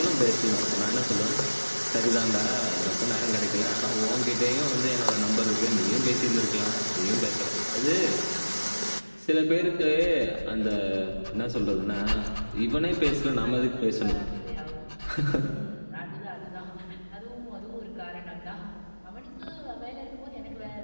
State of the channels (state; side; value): inverted; both; correlation -1.00